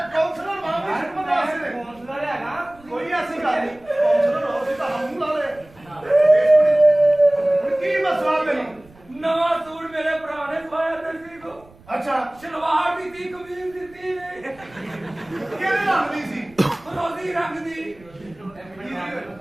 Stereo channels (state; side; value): noise; right; rumble, 26 dB below the sound